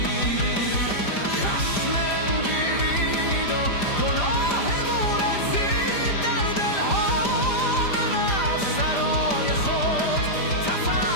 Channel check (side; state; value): right; late; 5.0 ms